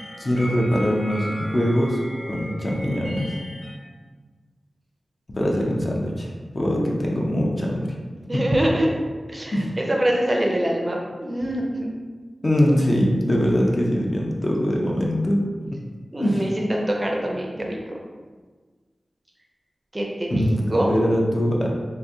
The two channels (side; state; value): both; normal; correlation 0.95